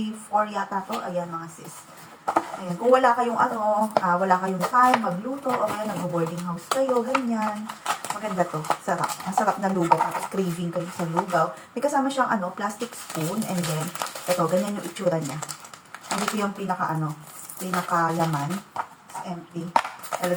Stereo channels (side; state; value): both; identical; correlation 1.00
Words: yata to. Ayan mga sis. Ayan. Kung wala kayong wala kayong time magluto o kaya nag-boarding house kayo, ganyan. Maganda to. Sarap. Masarap na lugaw. Tapos craving kayo sa lugaw. May kasama siyang plastic spoon. And then, ito, ganyan yung itsura niya. Hindi ko yung pinaka-laman. It's empty.